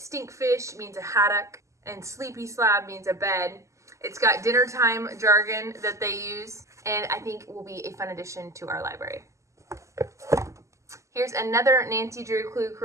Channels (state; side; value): late; left; 0.15 ms